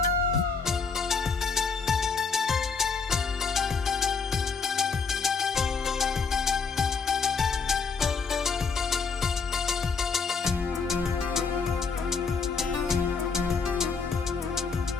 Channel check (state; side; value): quieter; right; 5.0 dB